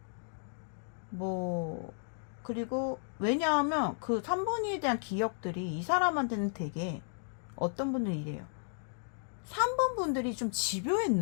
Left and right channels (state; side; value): silent; right; digital silence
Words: 뭐 그리고 왜냐하면 그 3번이에 대한 기억들이 이 사람한테는 되게, 어떤 분들은 이래요. 3번 분들이 좀